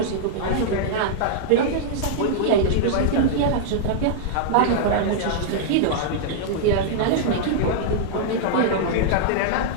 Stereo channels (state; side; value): different; both; correlation -0.01